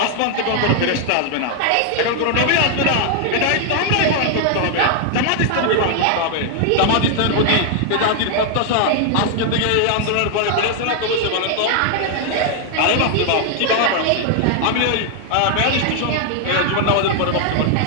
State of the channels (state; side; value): different; both; correlation 0.00